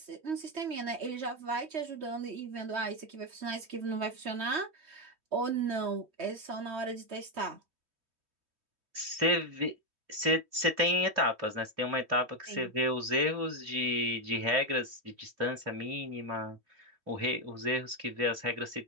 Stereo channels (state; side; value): late; left; 2.9 ms